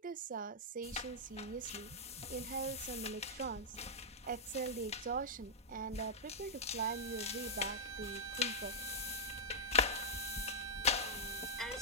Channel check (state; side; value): normal; both; correlation -0.09